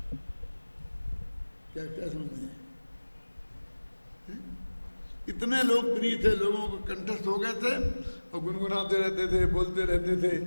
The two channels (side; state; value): both; inverted; correlation -1.00